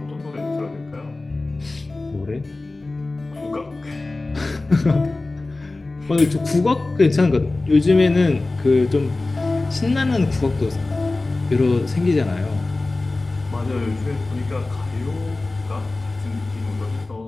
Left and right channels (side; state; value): right; quieter; 3.2 dB